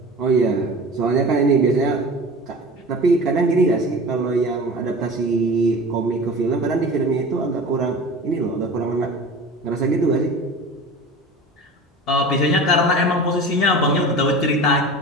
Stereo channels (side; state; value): both; normal; correlation 0.36